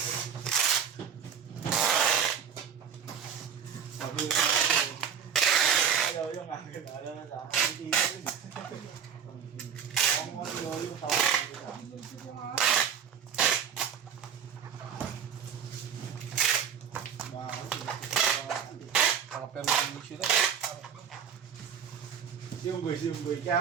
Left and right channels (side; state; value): left; quieter; 7.8 dB